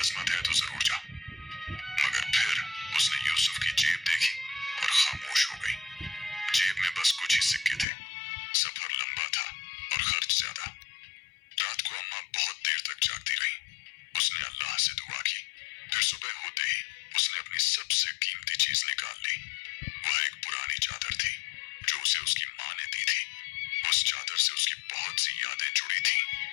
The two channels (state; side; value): drops out; right; at 7.9 s